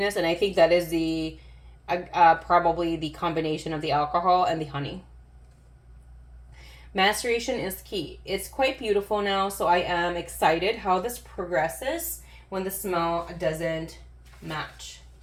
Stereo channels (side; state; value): both; identical; correlation 1.00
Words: and I think that is probably the combination of the alcohol and the honey. Maceration is key. It's quite beautiful now, so I am excited how this progresses when the smell doesn't match